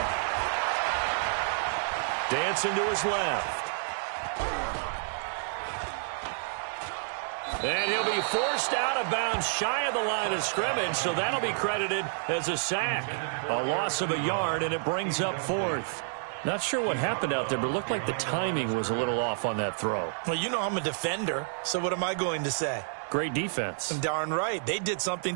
Dancing to his left. And he'll be forced out of bounds shy of the line of scrimmage, so that'll be credited as a sack. A loss of a yard, and it brings up 4th. Not sure what happened out there, but it looked like the timing was a little off on that throw. Well, you know I'm a defender, so what am I going to say? Great defense. Darn right. They did something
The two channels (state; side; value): silent; left; 58 dB below the other